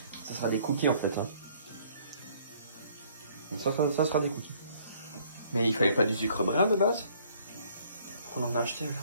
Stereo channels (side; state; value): both; inverted; correlation -0.60